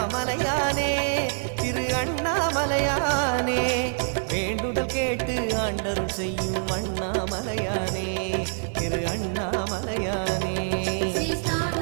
திரு அண்ணாமலையானே வேண்டுதல் கேட்டு ஆண்டரும் செய்யும் அண்ணாமலையானே திரு அண்ணாமலையானே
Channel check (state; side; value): silent; left; 61 dB below the other